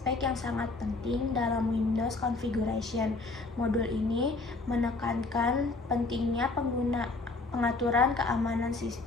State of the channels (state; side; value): quieter; right; 3.5 dB